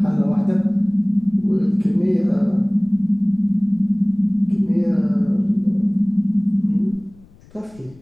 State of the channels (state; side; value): noise; left; rumble, 26 dB below the sound